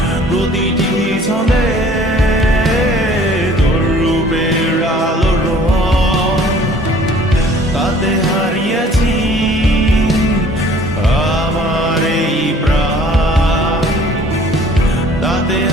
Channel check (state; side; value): normal; both; correlation 0.53